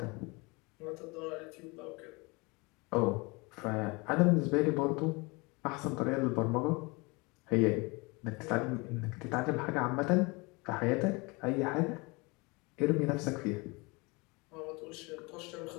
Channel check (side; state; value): right; quieter; 26.9 dB